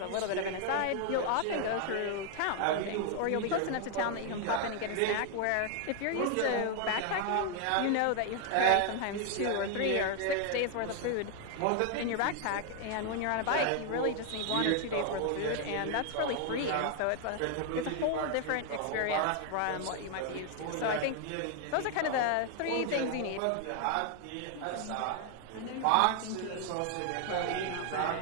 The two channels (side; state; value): both; different; correlation 0.00